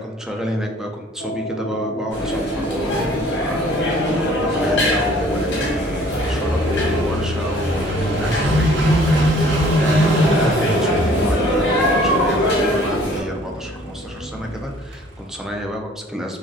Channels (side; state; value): both; normal; correlation 0.55